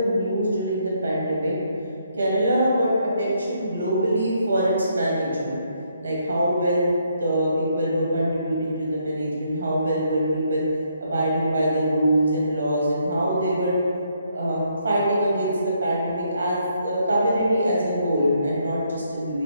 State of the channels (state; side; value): inverted; both; correlation -0.73